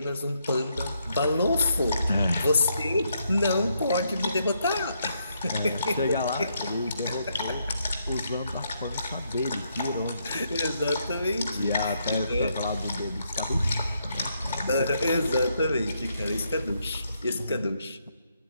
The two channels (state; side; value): inverted; both; correlation -0.76